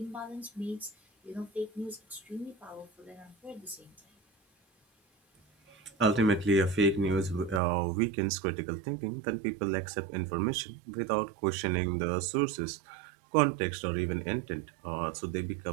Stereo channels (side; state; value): left; drops out; at 7.6 s